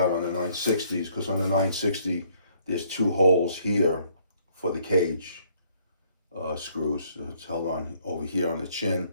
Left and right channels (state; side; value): inverted; both; correlation -0.65